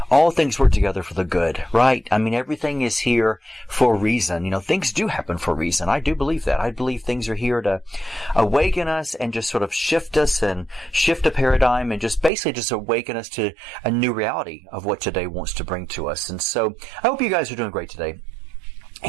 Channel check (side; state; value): left; drops out; at 12.3 s